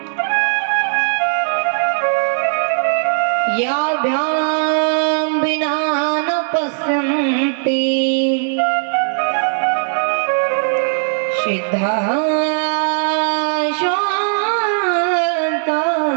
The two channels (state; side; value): silent; left; digital silence